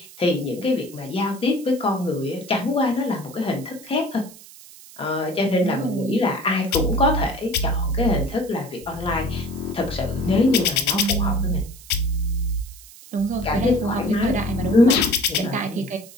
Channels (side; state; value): right; noise; hiss, 19 dB below the sound